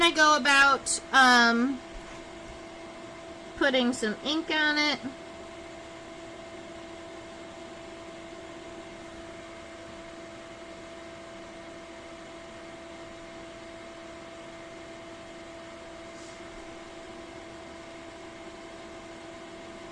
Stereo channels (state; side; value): identical; both; correlation 1.00